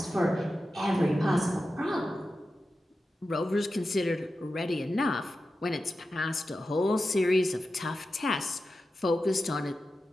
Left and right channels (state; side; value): normal; both; correlation 0.92